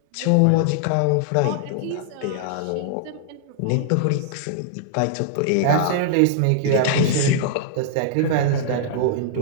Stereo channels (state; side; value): different; both; correlation -0.01